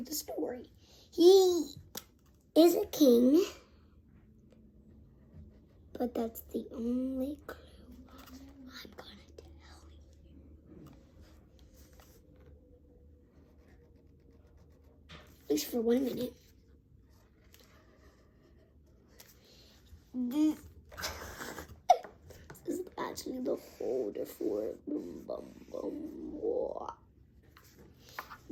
the story. He is a king, but that's the only clue I'm gonna tell you. At least for 1 minute. This is actually the holder for it. Boom, boom, boom. Whoa.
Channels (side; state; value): both; identical; correlation 1.00